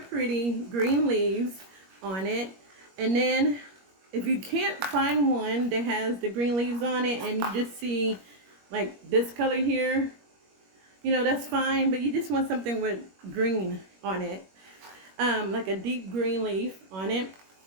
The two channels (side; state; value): left; late; 21 ms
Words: green leaves on it. And then if you can't find one that has the green leaves on it and you just see like this color here, you know, that's fine, but you just want something with green on it, like a deep green leaf on it.